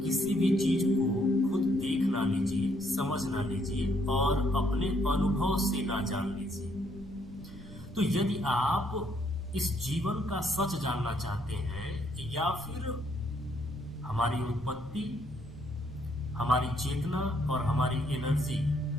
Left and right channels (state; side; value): noise; right; rumble, 17 dB below the sound